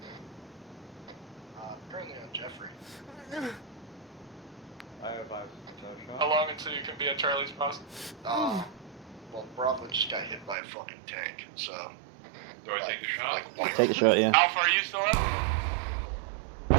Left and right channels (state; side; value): drops out; left; at 10.6 s